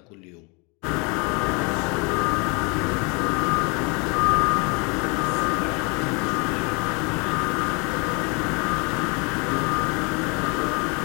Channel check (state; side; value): quieter; right; 30.9 dB